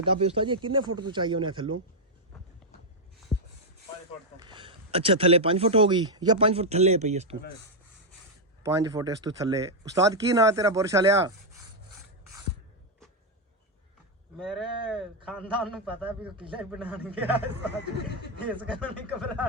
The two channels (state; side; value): normal; both; correlation 0.00